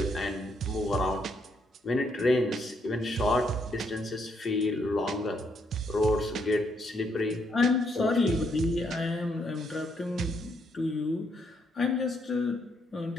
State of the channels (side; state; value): both; normal; correlation 0.74